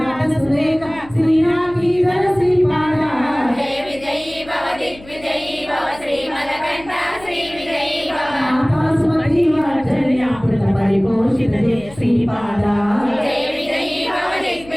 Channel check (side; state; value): left; noise; hum, 20 dB below the sound